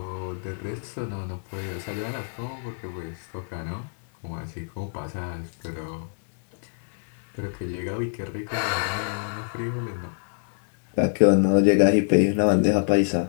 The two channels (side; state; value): right; silent; digital silence